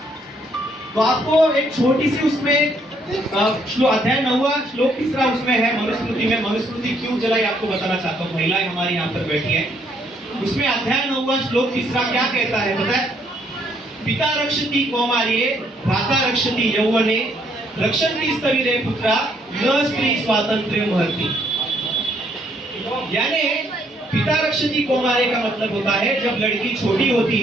तो आपको एक छोटी सी उसमें अध्याय 9 श्लोक 3 उसमें है मनुस्मृति में। मनुस्मृति क्यों जलाई आपको बताना चाहता हूँ, महिलाएं हमारी यहाँ पर बैठी है। उसमें अध्याय 9 श्लोक 3 क्या कहता है पता है, पिता रक्षति कौमार्ये भ्राता रक्षति यौवने रक्षन्ति स्थविरे पुत्रा न स्त्री स्वातंत्र्य महर्ति। यानी पिता रक्षति कौमार्ये का मतलब होता है, जब लड़की छोटी होती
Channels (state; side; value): normal; both; correlation 0.69